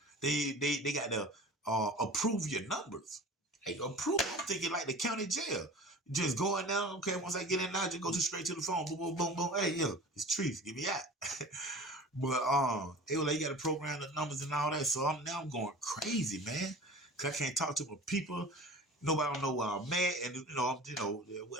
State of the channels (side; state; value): both; normal; correlation 0.39